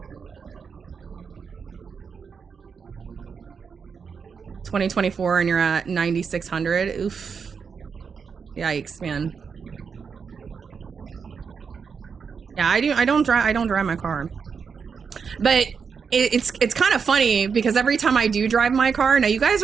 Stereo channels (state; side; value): quieter; left; 6.0 dB